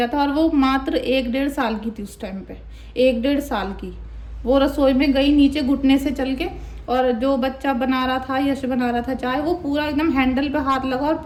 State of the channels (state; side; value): identical; both; correlation 1.00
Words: था। और वो मात्र 1-1.5 साल की थी उस टाइम पे, 1-1.5 साल की। वो रसोई में गई नीचे घुटने से चल के, और जो बच्चा बना रहा था, यश बना रहा था चाय, वो पूरा एकदम हैंडल पे हाथ लगा और